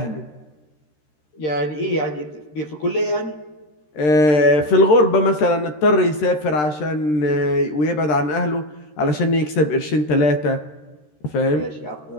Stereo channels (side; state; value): right; late; 13 ms